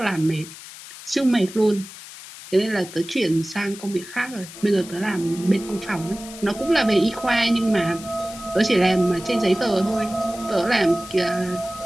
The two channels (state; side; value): noise; left; hiss, 15 dB below the sound